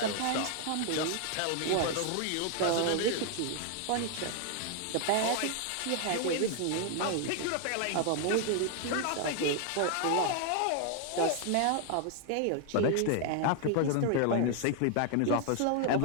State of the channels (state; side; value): different; both; correlation 0.00